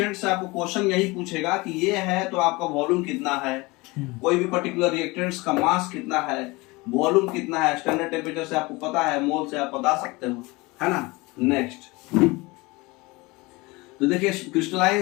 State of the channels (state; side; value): quieter; right; 23.6 dB